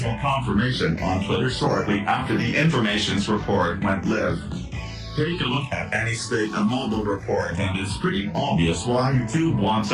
confirmation on Twitter shortly after the information's report went live. Take a look at any state of mobile report and it's pretty obvious why YouTube wants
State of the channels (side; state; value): both; identical; correlation 1.00